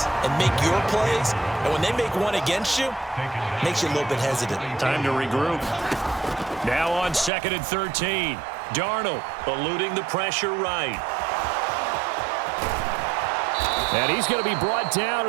and make your plays. And when they make one against you, it makes you a little bit hesitant. Time to regroup. Now on 2nd and 13. Darnold eluding the pressure right. And he's going to be brought down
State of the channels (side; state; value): left; drops out; at 7.3 s